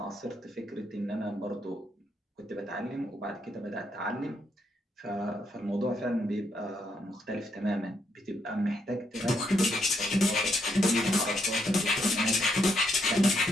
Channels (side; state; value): both; normal; correlation 0.76